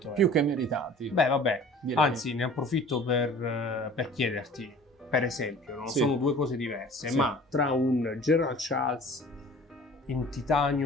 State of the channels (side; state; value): both; normal; correlation 0.46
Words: euro. più che meritati. Beh, vabbè, direi. anzi ne approfitto per chiederti, per esempio, no? Sì. Sono due cose diverse, Sì. ma tra un Gerald Charles in